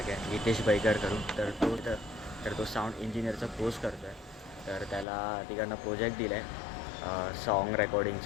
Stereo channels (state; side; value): drops out; right; at 5.1 s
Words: आहे, हितेश बैकर करून. तर तो साऊंड इंजिनिअरचा कोर्स करतो आहे. तर त्याला तिकडनं प्रोजेक्ट दिला आहे सॉन्ग